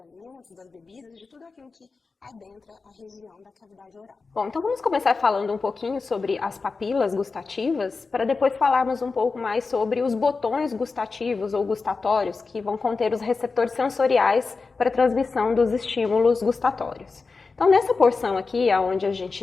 das bebidas, de tudo aquilo que adentra a região da cavidade oral. Bom, então vamos começar falando um pouquinho sobre as papilas gustativas, para depois falarmos um pouco mais sobre os botões gustativos ou gustatórios, que vão conter os receptores sensoriais para a transmissão dos estímulos gustatórios. Então, nessa porção aqui, onde a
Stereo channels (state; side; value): quieter; right; 4.3 dB